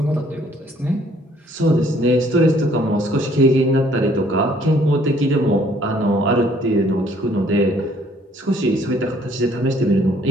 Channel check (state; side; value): normal; both; correlation 0.61